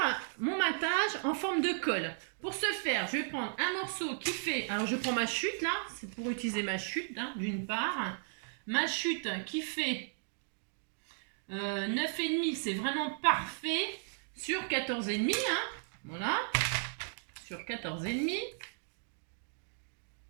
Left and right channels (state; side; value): silent; left; digital silence